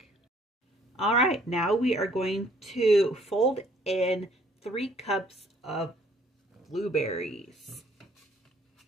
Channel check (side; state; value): both; normal; correlation 0.61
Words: All right, now we are going to fold in 3 cups of blueberries.